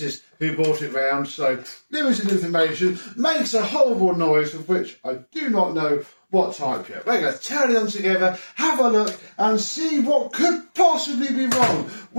who brought it round, so limited information. Makes a horrible noise of which I do not know what type yet. We're going to turn them together, have a look and see what could possibly be wrong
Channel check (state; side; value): inverted; both; correlation -1.00